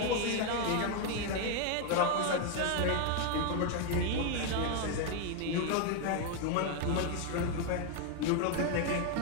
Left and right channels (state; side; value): different; both; correlation 0.01